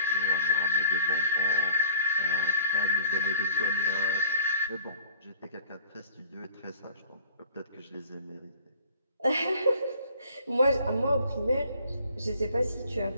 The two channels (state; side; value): inverted; both; correlation -0.51